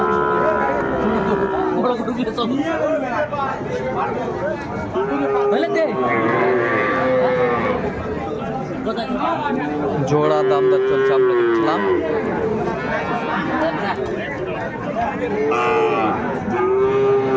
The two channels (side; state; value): both; identical; correlation 1.00